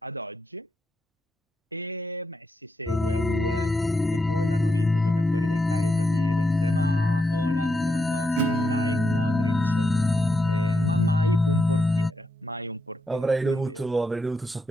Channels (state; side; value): normal; both; correlation 0.83